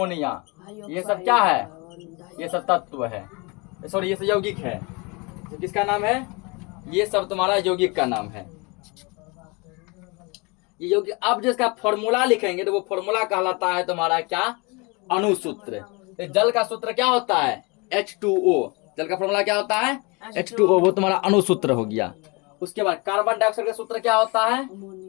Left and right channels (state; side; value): quieter; right; 28.3 dB